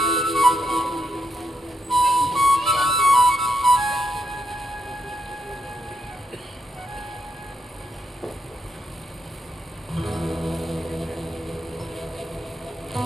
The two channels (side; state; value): both; normal; correlation 0.81